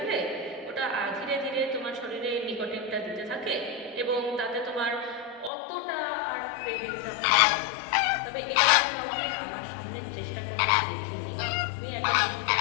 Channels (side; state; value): right; drops out; at 5.5 s